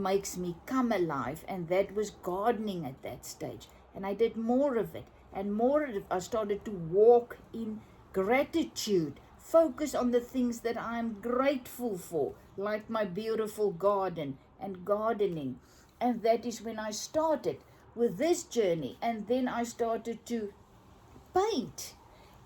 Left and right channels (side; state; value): both; identical; correlation 1.00